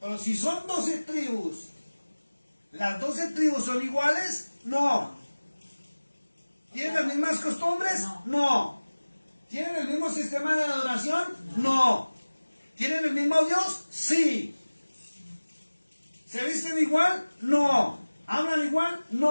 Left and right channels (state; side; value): inverted; both; correlation -1.00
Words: Pero si son 12 tribus, ¿las 12 tribus son iguales? No. ¿Tienen las mismas costumbres? No. ¿Tienen el mismo sistema de adoración? No. ¿Tienen el mismo Dios? Sí. ¿Se visten igual? No. ¿Hablan igual?